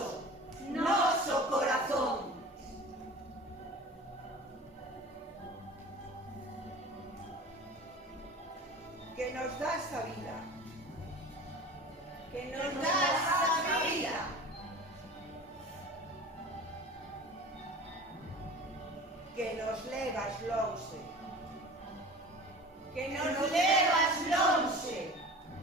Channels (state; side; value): normal; both; correlation 0.38